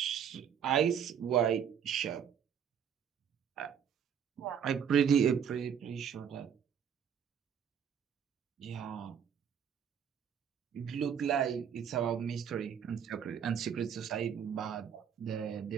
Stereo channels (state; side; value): quieter; left; 8.1 dB